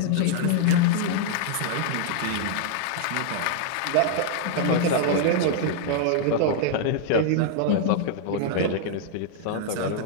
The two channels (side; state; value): both; different; correlation -0.01